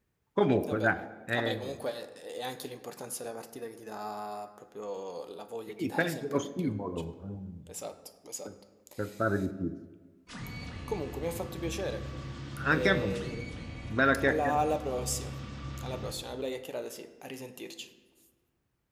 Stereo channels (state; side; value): identical; both; correlation 1.00